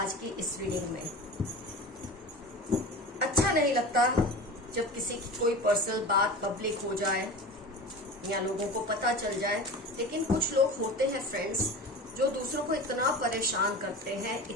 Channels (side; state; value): both; normal; correlation 0.33